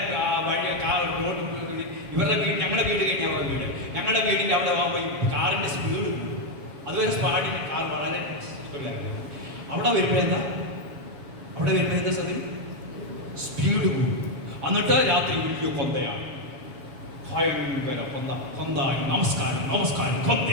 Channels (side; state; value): left; late; 7.2 ms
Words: ഇവരുടെ വീട്, ഞങ്ങളുടെ വീട് കഴിഞ്ഞ അവരുടെ വീട്, ഞങ്ങളുടെ വീടിൻ്റെ അവിടെ കാറിന്റെ സ്പീഡ് കൂടും. അതുവരെ സ്പാഡിന് കാർ വളരെ ഇഷ്ടമില്ലായിരുന്നു. അവിടെ വരുമ്പോൾ എന്താ സതി സ്പീഡ് കൂടും. എന്നിട്ട് രാത്രി വലിയ കൊന്തയാണ്, ഭയങ്കര കൊന്തായി നമസ്കാരം നമസ്കാരം.